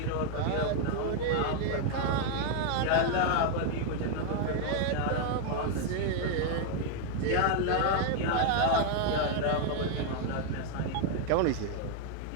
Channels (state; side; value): different; both; correlation 0.00